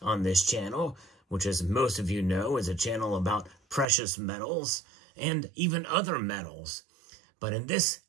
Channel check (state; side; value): drops out; left; at 3.9 s